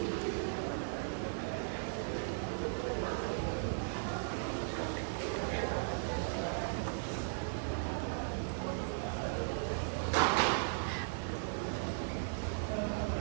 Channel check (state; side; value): silent; left; digital silence